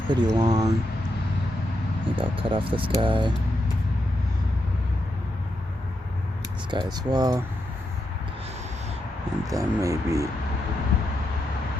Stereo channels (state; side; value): normal; both; correlation 0.84